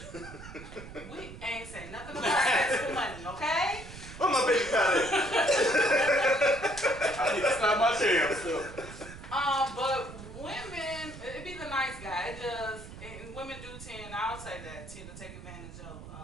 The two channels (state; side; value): noise; right; rumble, 14 dB below the sound